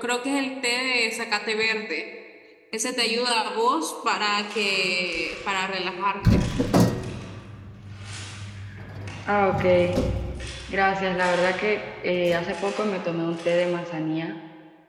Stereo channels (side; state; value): both; identical; correlation 1.00